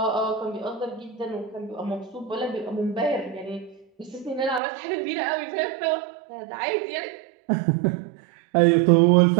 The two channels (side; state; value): left; drops out; at 4.6 s